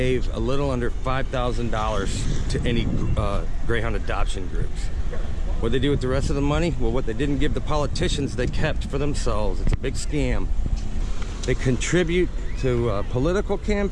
a little under $5,000 to any Greyhound adoption groups. What they do with the rest of the money? Well, what they didn't give the politicians, they kept for themselves. It's a big scam. They contribute to political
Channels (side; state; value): both; identical; correlation 1.00